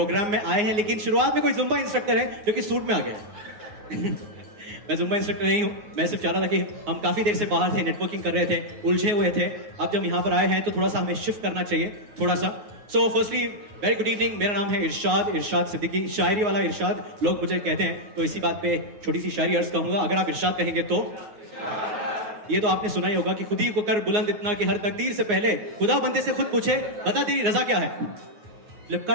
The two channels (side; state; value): left; late; 9.6 ms